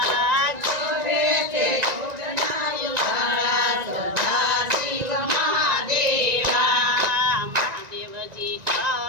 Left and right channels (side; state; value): left; late; 1.9 ms